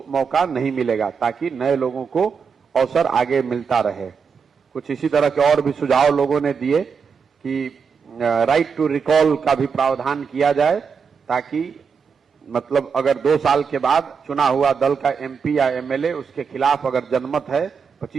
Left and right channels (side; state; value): left; quieter; 6.0 dB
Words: मौका नहीं मिलेगा, ताकि नए लोगों को अवसर आगे मिलता रहे। कुछ इसी तरह के और भी सुझाव लोगों ने दिए कि राइट टू रिकॉल का भी प्रावधान किया जाए, ताकि मतलब अगर 2 साल के बाद चुना हुआ दल का MP या MLA उसके खिलाफ अगर जनमत है,